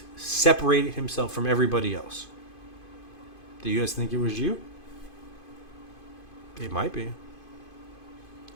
separated himself from everybody else? Do you guys think it was you? It might be.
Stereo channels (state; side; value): late; right; 2.5 ms